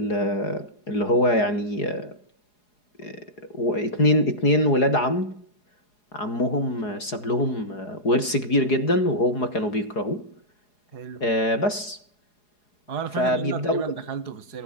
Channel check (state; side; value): late; right; 4.8 ms